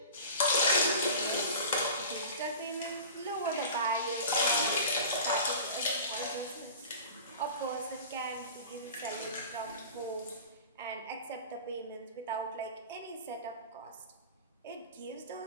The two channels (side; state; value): both; inverted; correlation -0.37